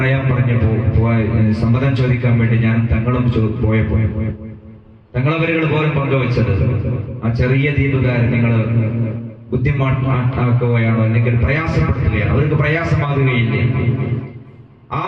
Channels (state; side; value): identical; both; correlation 1.00